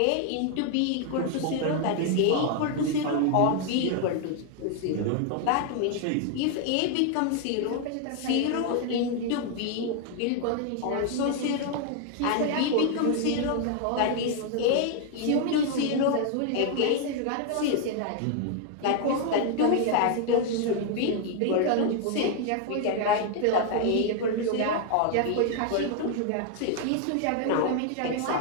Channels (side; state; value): both; different; correlation 0.00